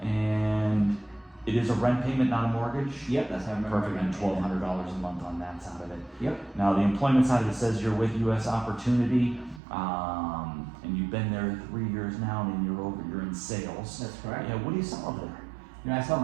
and it is a rent payment, not a mortgage? Yep, that's how I remember. Perfect, and $1,200 a month on that side of it. Yep. Now, the employment side of it says you're with U.S. Opportunity, and you've been there 3 years now, and you're in sales. That's correct. Yeah, what do you sell over there? You know, I sell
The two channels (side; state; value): left; drops out; at 9.6 s